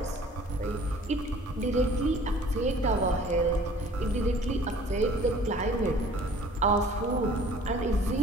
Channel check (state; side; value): normal; both; correlation 0.51